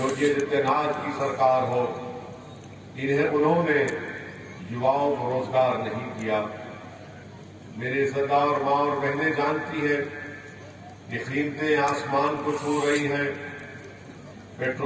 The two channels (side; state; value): both; identical; correlation 1.00